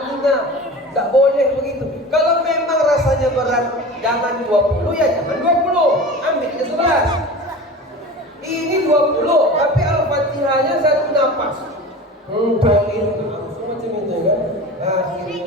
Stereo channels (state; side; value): normal; both; correlation 0.34